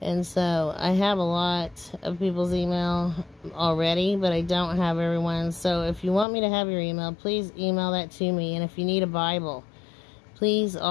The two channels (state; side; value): drops out; right; at 6.2 s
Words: And so I have a lot of people's email already, but I don't have everyone's. So if you want me to have your email, please email that to me. And if you need a Bible, please